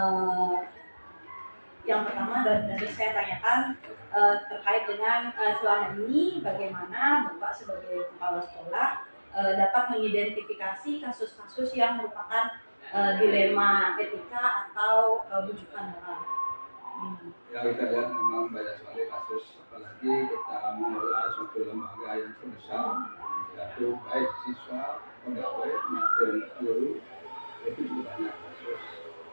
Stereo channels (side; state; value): both; inverted; correlation -1.00